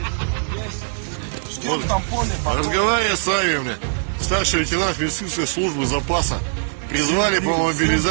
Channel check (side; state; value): left; silent; digital silence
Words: Вот, разговаривая с вами, мне, старший лейтенант медицинской службы запаса, призвали по